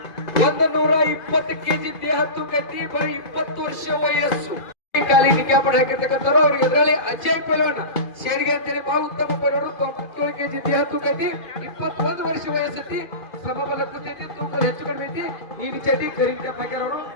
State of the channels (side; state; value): right; late; 2.5 ms